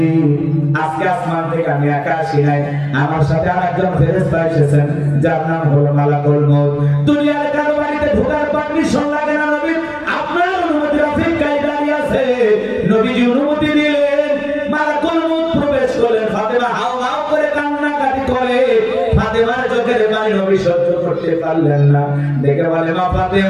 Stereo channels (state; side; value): noise; right; hum, 29 dB below the sound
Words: আজকে আসমান থেকে আমি একা আসি নাই, আমার সাথে আরেকজন ফেরেশতা এসেছেন, যার নাম হলো মালাকুল মউত। দুনিয়ার কারো বাড়িতে ঢোকার পারমিশন লাগে না নবী, আপনার অনুমতির অপেক্ষায় দাঁড়িয়ে আছে। নবীজি অনুমতি দিলেন, মালাকুল মউত প্রবেশ করলেন। ফাতেমা হাউ হাউ করে কান্নাকাটি করে। ফাতেমার চোখের পানি নবী সহ্য করতে পারলেন না, দেখে বলে, মা